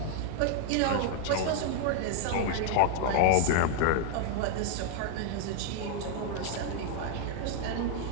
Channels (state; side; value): different; both; correlation -0.01